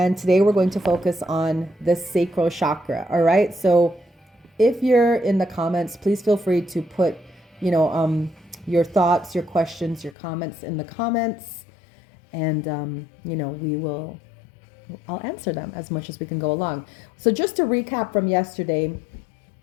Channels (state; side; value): drops out; right; at 10.2 s